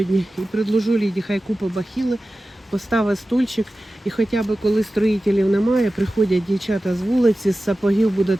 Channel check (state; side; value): normal; both; correlation 0.95